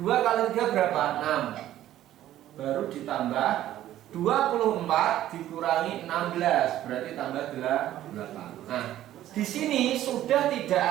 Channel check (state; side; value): quieter; left; 13.0 dB